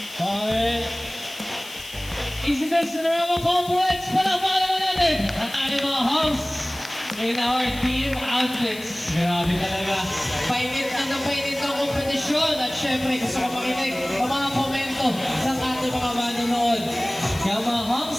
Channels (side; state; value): left; noise; hiss, 16 dB below the sound